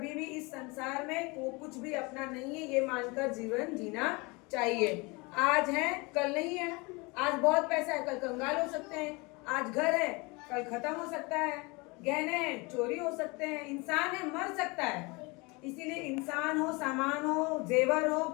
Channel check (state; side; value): quieter; right; 26.8 dB